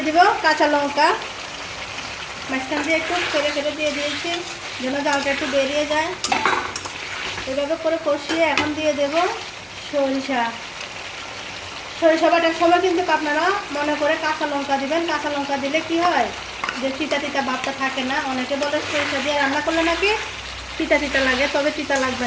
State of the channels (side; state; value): both; identical; correlation 1.00